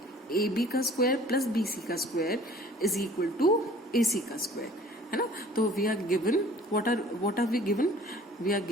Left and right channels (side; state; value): both; normal; correlation 0.50